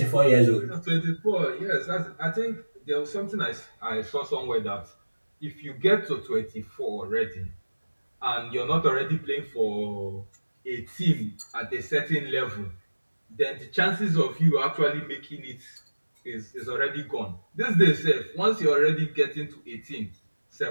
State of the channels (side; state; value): both; inverted; correlation -1.00